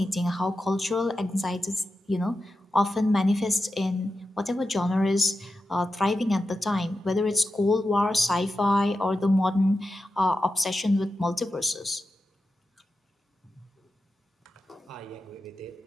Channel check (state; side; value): normal; both; correlation 0.91